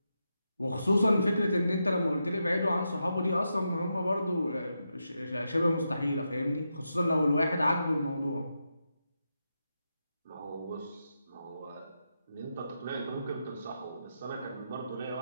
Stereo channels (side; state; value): both; inverted; correlation -0.86